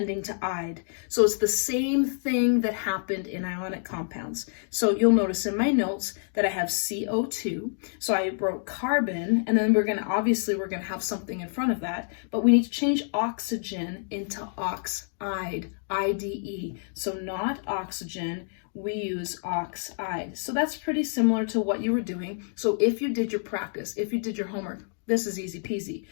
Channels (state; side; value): silent; right; 60 dB below the other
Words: to "ide." So it's the same thing that happened in ionic compounds. So you'll notice in my notes that I have CO2. So I wrote carbon, and then we're going to have something in front of that, but we need to change oxygen into oxide, IDE. So not oxygen, we use oxide. So that's pretty similar to what you were doing. So if you did your practice, if you did your homework, this is easy peasy.